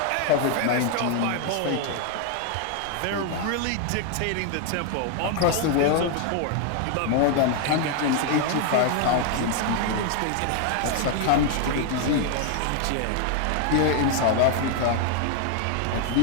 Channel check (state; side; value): different; both; correlation 0.00